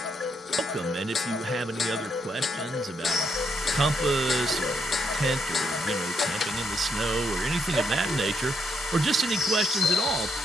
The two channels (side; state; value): both; normal; correlation 0.76